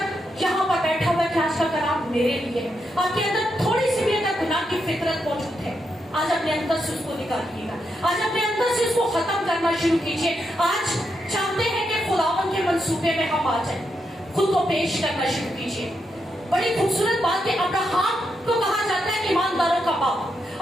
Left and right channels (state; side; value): normal; both; correlation 0.82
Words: یہاں پر بیٹھا ہوا ہے کہ آج کا کلام میرے لیے ہے, آپ کے اندر تھوڑی سی بھی اگر گناہ کی فطرت موجود ہے, آج اپنے اندر سے اس کو نکالیے گا, آج اپنے اندر سے اس کو ختم کرنا شروع کیجیے. آج چاہتے ہیں کہ خداوند کے منصوبے میں ہم آ جائیں, خود کو پیش کرنا شروع کیجیے. بڑی خوبصورت بات کہ ابراہیم کو کہا جاتا ہے ایمانداروں کا باپ,